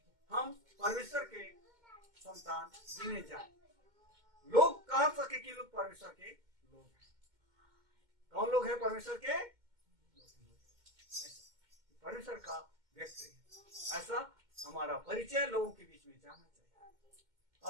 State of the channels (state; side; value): late; left; 2.1 ms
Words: हम परमेश्वर के संतान गिने जाए। लोग कह सके कि लोग परमेश्वर के लोग हैं। कौन लोग हैं परमेश्वर के? परमेश्वर का व्यक्ति है, ऐसा हमारा परिचय लोगों के बीच में जाना चाहिए।